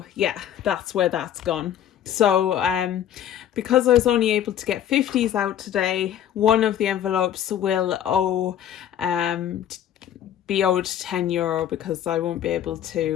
yeah, that's where that's gone. So because I was only able to get 50s out today, one of the envelopes will be owed €10 because I won't be able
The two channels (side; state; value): right; quieter; 10.4 dB